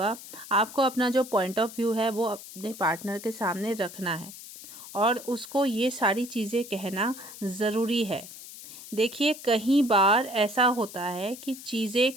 आपको अपना जो पॉइंट ऑफ व्यू है वो अपने पार्टनर के सामने रखना है और उसको ये सारी चीज़ें कहना ज़रूरी है। देखिए, कई बार ऐसा होता है कि चीज़ें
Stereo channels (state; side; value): noise; left; hiss, 14 dB below the sound